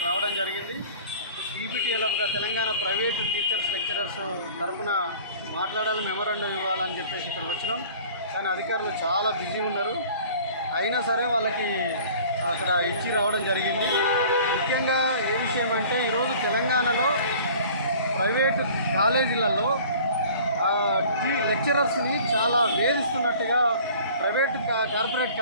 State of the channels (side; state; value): both; inverted; correlation -0.47